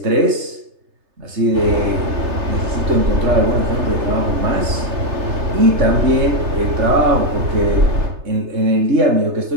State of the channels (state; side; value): late; left; 3.3 ms